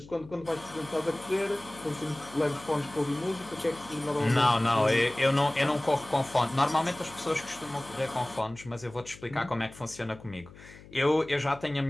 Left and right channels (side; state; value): left; noise; hum, 20 dB below the sound